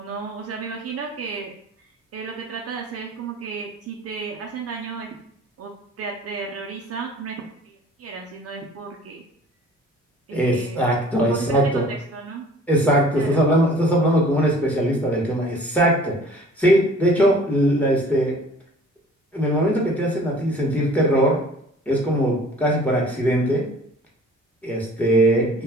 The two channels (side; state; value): both; normal; correlation 0.49